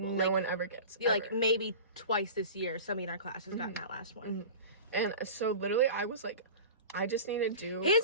No one ever gets. Like maybe twice this year, somebody in our class has gotten that last one. And so literally I was like, I just need to do.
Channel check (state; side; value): inverted; both; correlation -0.35